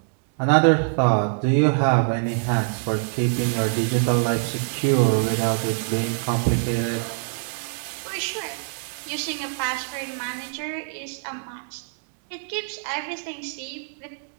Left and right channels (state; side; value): silent; left; digital silence